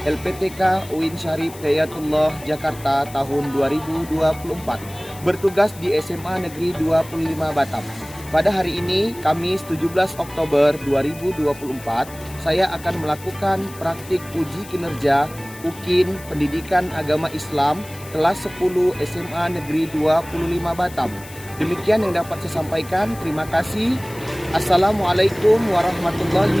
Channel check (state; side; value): noise; left; hiss, 18 dB below the sound